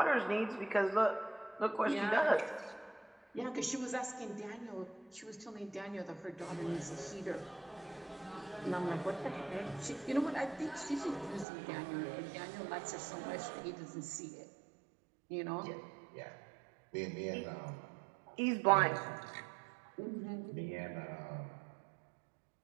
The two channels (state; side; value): drops out; left; at 11.5 s